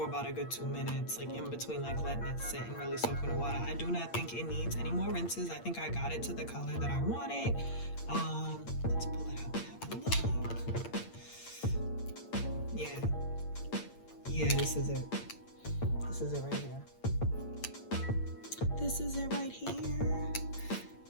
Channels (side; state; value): right; late; 8.7 ms